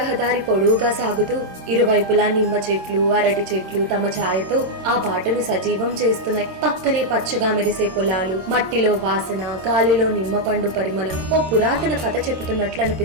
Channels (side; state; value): left; late; 26 ms